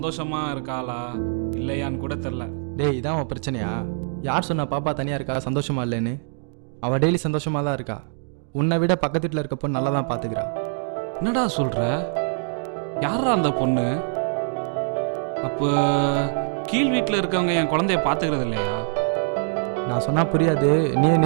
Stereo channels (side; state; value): left; silent; digital silence